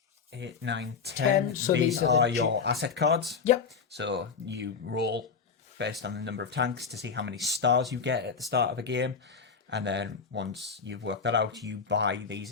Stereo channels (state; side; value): quieter; right; 5.7 dB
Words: 8, 9, 10. So these are your asset cards. Yep. So you roll based on the number of tanks to see how many stars you get at the start of a game. And then once you've worked that out, you buy